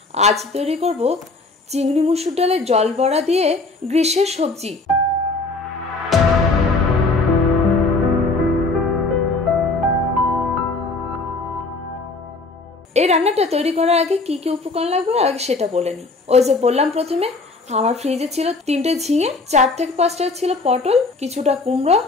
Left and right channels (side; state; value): right; quieter; 3.5 dB